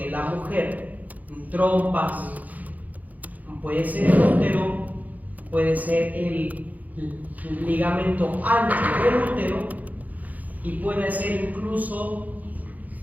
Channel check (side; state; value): left; late; 0.079 ms